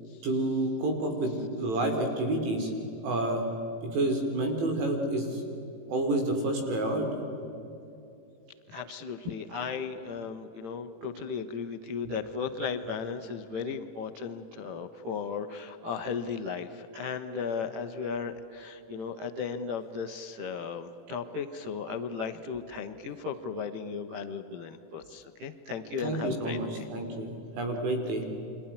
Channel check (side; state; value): left; late; 18 ms